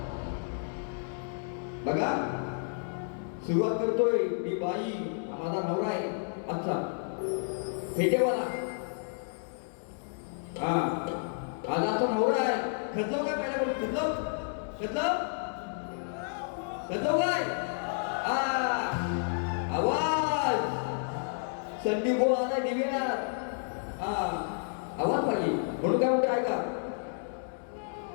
बघा, सुरुवात करतोय मी बाई, माझा नवरा आहे आजचा फेटेवाला. आज आता नवरा आहे, खचलो काय पहिल्या कदलव कदलव कदलव काय आवाज संधी बोल आला दिव्यात आवाज पाहिजे म्हणून काय म्हणतो ऐका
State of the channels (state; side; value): silent; right; digital silence